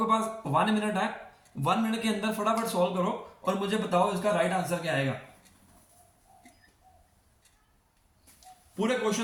पास 1 मिनट है, 1 मिनट के अंदर फटाफट सॉल्व करो और मुझे बताओ इसका राइट आंसर क्या आएगा। पूरे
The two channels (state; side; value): identical; both; correlation 1.00